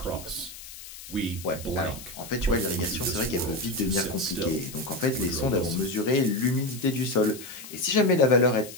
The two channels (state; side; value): noise; left; hiss, 14 dB below the sound